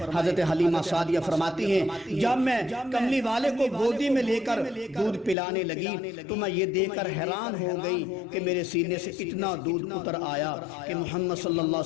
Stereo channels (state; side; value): drops out; right; at 5.4 s